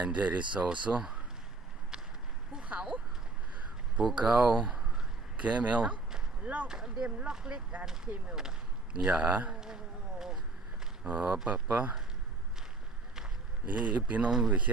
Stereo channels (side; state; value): left; quieter; 3.5 dB